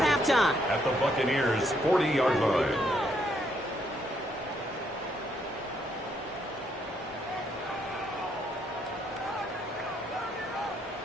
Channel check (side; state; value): both; normal; correlation 0.72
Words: halftime. At the Buccaneers' 40-yard line.